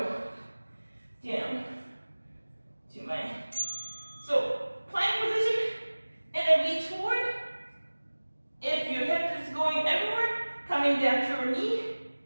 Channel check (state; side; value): inverted; both; correlation -1.00